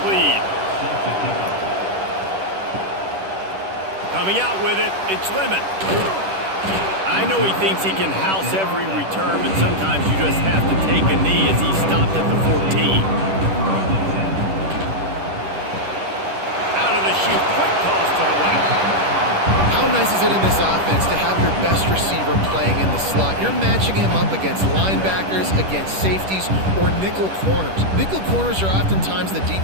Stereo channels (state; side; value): late; left; 10 ms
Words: lead. Coming out with it, it's Lemon. I know he thinks he can house every return, but sometimes you just have to take a knee as he stopped at the 14. Out of the chute, quick toss to the right. How nice is it in this offense to have your best receiver playing in the slot? You're matching him up against linebackers, against safeties, or nickel corners. Nickel corners are oftentimes the